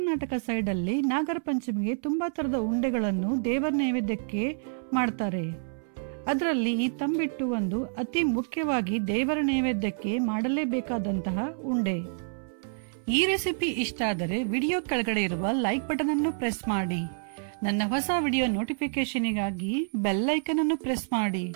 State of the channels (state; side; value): silent; left; 59 dB below the other